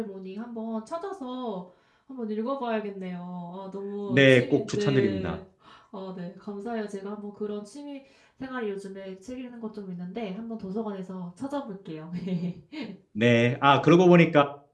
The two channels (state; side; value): identical; both; correlation 1.00